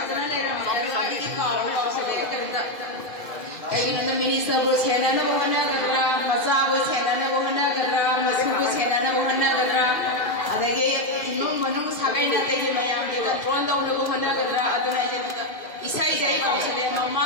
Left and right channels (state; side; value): late; right; 2.3 ms